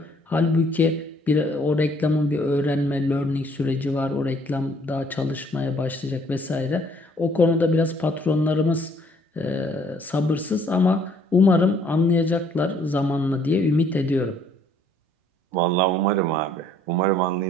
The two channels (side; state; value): both; normal; correlation 0.61